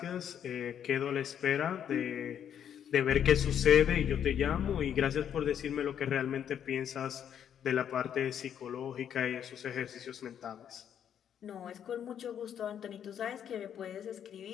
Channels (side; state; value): right; quieter; 9.1 dB